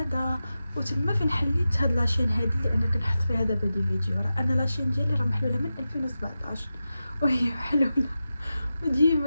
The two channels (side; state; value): both; inverted; correlation -0.92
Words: وتما فين حليت هاد لاشين هادي اللي انا كنحط فيها دابا دي فيديو. راه انا لاشين ديالي راه محلوله من 2017 وهي محلوله،